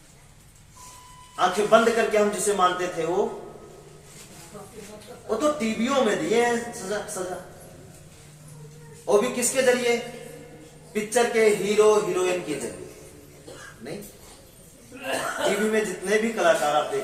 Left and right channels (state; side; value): identical; both; correlation 1.00